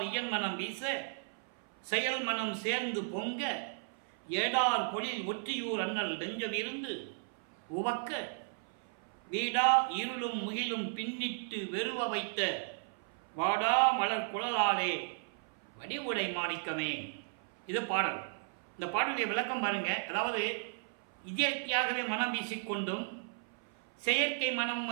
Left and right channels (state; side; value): silent; left; 54 dB below the other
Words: இயன் மனம் வீச, செயல் மனம் சேர்ந்து பொங்க, ஏடார் பொழில் ஒற்றியூர் அண்ணல் நெஞ்சம் இருந்து உவக்க, வீடா இருளும் முகிலும் பின்னிட்டு வெறுவ வைத்த வாடா மலர் குழலாலே வடிவுடை மாணிக்கமே. இது பாடல். இந்த பாடலுடைய விளக்கம் பாருங்க. அதாவது இயற்கையாகவே மனம் வீசிக்கொண்டும் செயற்கை மனமும்